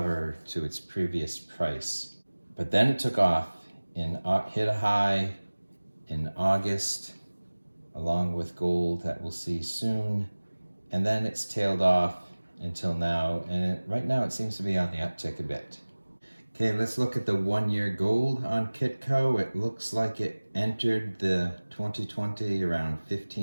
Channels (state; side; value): inverted; both; correlation -1.00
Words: to its previous price. But then it took off and hit a high in August, along with gold that we'll see soon. And then it's tailed off until now. And right now it seems to be on the uptick a bit. Okay, let's look at the 1 year gold on Kitco. It looks like it entered the 2020 around